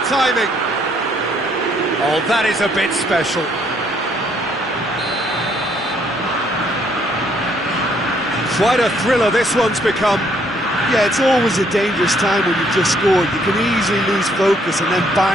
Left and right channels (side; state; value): both; normal; correlation 0.67